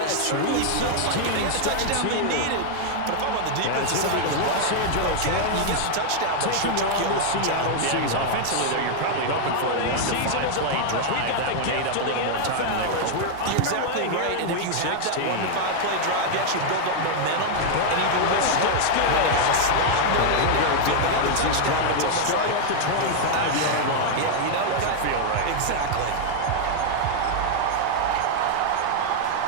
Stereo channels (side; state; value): both; different; correlation 0.00